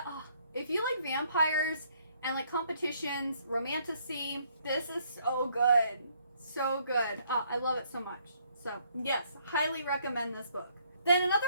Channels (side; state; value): both; inverted; correlation -0.67